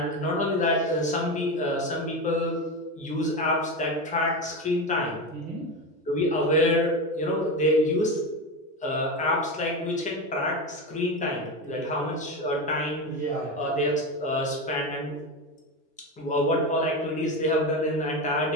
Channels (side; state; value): both; normal; correlation 0.18